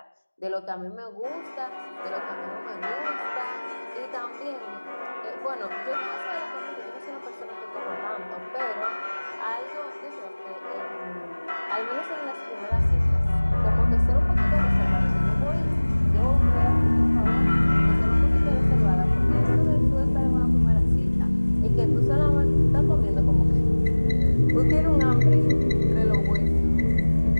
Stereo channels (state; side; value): inverted; both; correlation -1.00